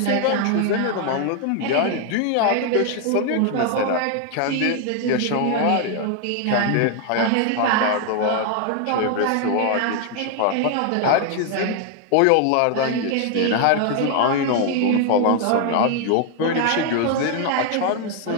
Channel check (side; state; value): both; different; correlation 0.00